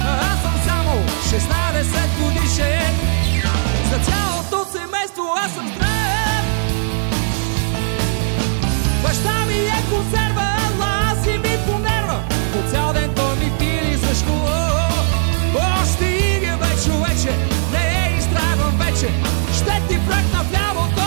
Аз съм само 16 годишен, за цялото семейство аз съм здрав. Баща ми е консерва, лази ми по нерва, по цял ден той ми пили за школа. О, стига бе, човече, не изтрайвам вече, ще ти пръкна в лявото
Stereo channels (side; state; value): left; silent; 67 dB below the other